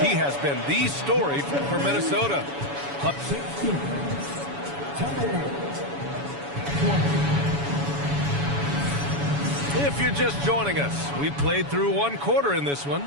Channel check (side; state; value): left; late; 7.1 ms